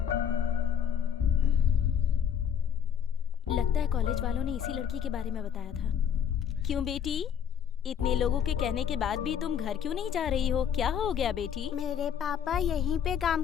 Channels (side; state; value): right; quieter; 8.5 dB